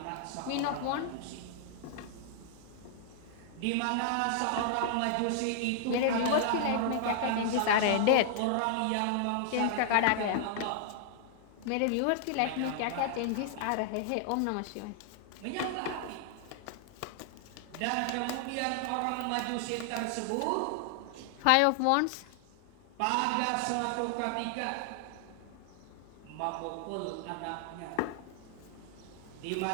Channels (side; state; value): both; different; correlation -0.01